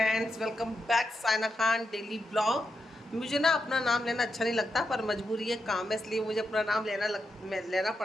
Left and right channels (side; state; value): both; normal; correlation 0.85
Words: welcome back Saina Khan daily blog. मुझे ना अपना नाम लेना अच्छा नहीं लगता, पर मजबूरी है, काम है, इसलिए मुझे अपना नाम लेना